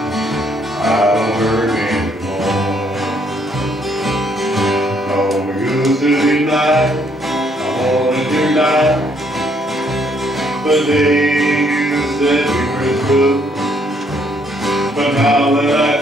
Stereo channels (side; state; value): both; normal; correlation 0.68